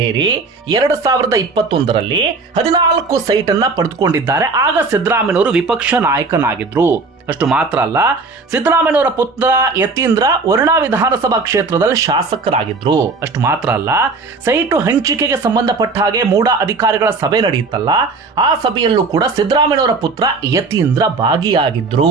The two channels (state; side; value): quieter; left; 4.0 dB